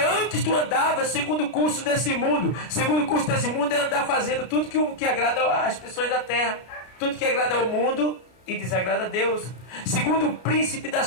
tu andava segundo o curso desse mundo. Segundo o curso desse mundo é andar fazendo tudo que agrada às pessoas da terra. Tudo que agrada ao mundo e desagrada a Deus. Segundo o príncipe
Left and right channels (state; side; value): late; right; 33 ms